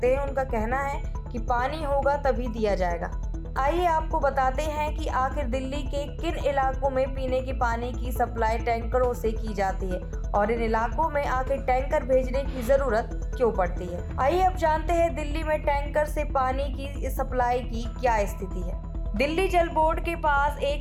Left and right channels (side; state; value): both; identical; correlation 1.00